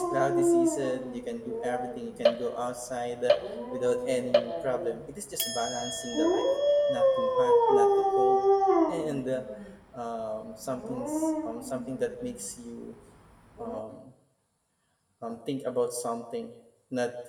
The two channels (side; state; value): both; identical; correlation 1.00